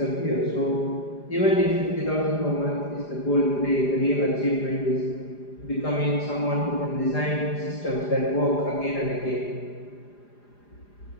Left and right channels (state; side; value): late; right; 4.9 ms